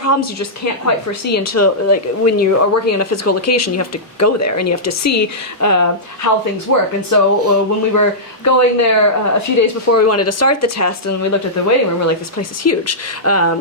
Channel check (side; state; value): both; normal; correlation -0.14